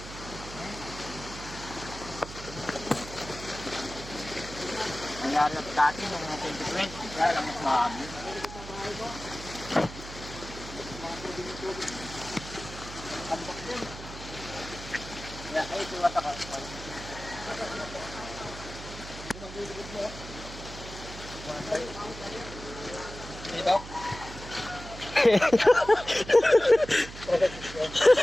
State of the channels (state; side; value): noise; right; hum, 12 dB below the sound